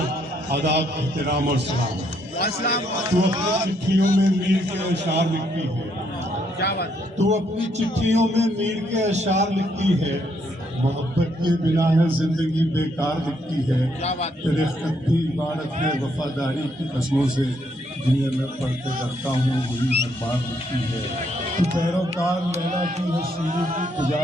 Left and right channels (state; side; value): normal; both; correlation 0.73